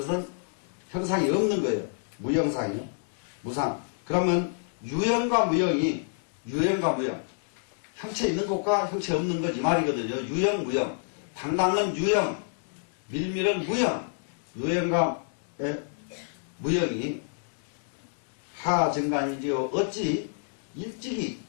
형상이 없는 거예요. 무형상이요. 무상. 그러면 유형과 무형. 형체 있는 것과 형체 없는 것 이 말이거든요. 유형, 무형. 당당은 유형, 밀밀은 무형. 유형과 무형이 하증간이지요. 어찌 일찍이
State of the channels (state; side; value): silent; right; digital silence